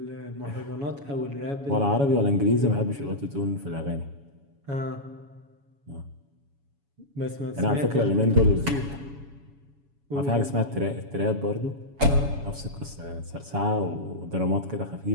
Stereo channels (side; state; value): left; late; 7.1 ms